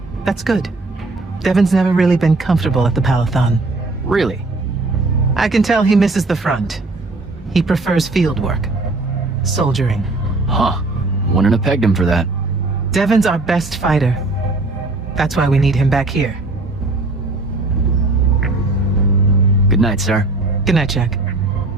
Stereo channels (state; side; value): quieter; left; 3.1 dB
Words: That's good. Devin's never really been comfortable at the Palathon. Really? I can tell he misses the front. He prefers field work. Soldiering. Huh. Wouldn't have pegged him for that. Devin's our best fighter. That's why we need him back here. Good night, sir. Good night, Jack.